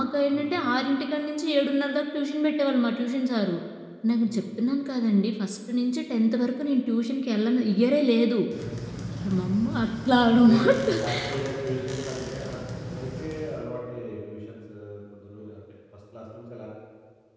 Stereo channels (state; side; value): identical; both; correlation 1.00